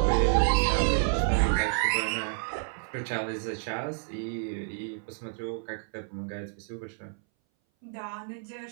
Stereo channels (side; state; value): left; silent; 58 dB below the other